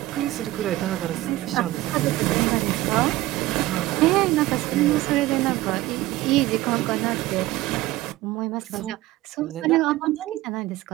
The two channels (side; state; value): left; quieter; 17.1 dB